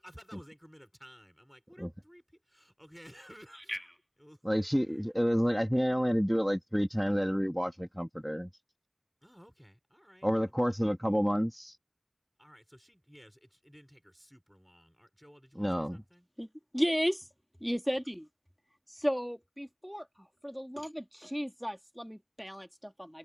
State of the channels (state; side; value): identical; both; correlation 1.00